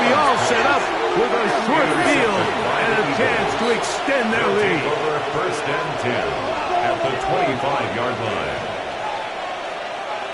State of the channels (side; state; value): both; identical; correlation 1.00